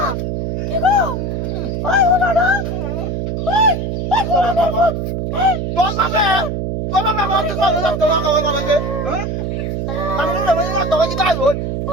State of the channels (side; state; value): right; noise; hum, 2 dB below the sound